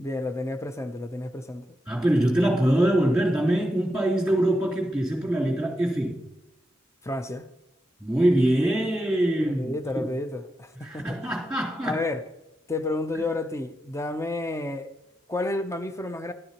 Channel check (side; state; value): both; normal; correlation 0.87